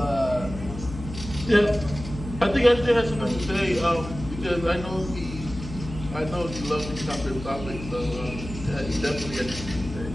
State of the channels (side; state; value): left; noise; hum, 11 dB below the sound